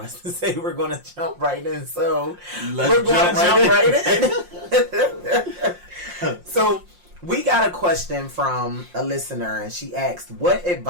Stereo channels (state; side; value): late; left; 5.6 ms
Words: to say we're going to jump right in. So we're going to jump right in. So we got a question from a listener, and she asked, what